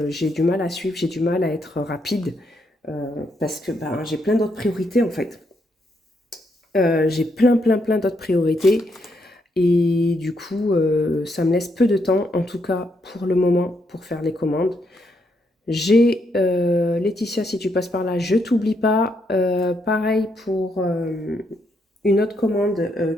j'ai du mal à suivre, j'ai du mal à être rapide parce que ben, j'ai plein d'autres priorités en fait. J'ai plein d'autres priorités et du coup, ça me laisse peu de temps, en tout cas pour le moment, pour faire les commandes. J'ai Laetitia, si tu passes par là, je t'oublie pas. Pareil pour une autre commande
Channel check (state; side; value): normal; both; correlation 0.77